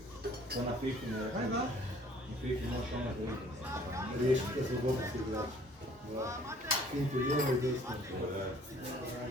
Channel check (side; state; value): both; normal; correlation 0.56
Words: To na Fifi ne je. Na Fifi možeš ono da vidim. Riješite slobodnosti igrača. Finti lijevo i desno.